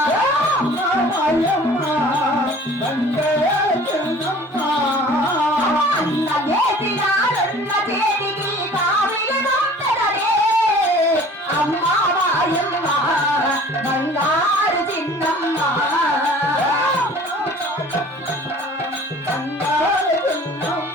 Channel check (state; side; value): normal; both; correlation 0.48